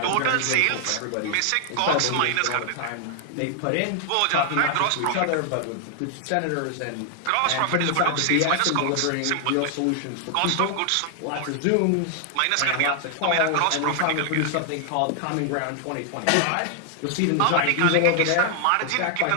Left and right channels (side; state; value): both; different; correlation 0.00